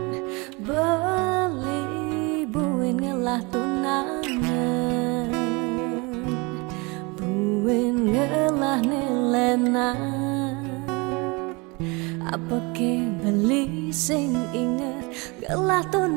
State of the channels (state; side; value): quieter; left; 27.5 dB